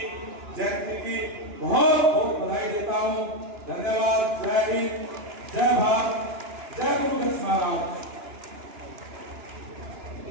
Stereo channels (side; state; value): left; late; 2.9 ms